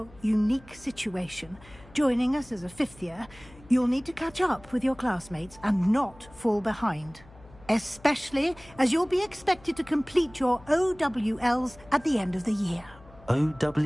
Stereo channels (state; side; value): noise; left; hum, 23 dB below the sound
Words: unique situation, joining us as a fifth year, you'll need to catch up with your classmates and not fall behind. Especially as you'll be expected to complete your OWLs at the end of the year.